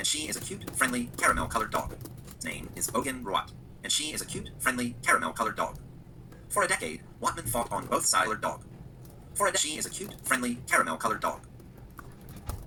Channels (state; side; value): identical; both; correlation 1.00